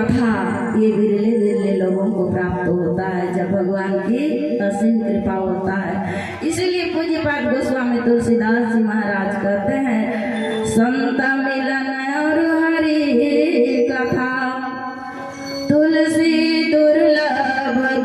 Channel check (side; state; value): both; identical; correlation 1.00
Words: ये विरले विरले लोगों को प्राप्त होता है जब भगवान की असीम कृपा होता है। इसीलिए पूज्यपाद गोस्वामी तुलसीदास जी महाराज कहते हैं, संत मिलन और हरि कथा तुलसी दुर्लभ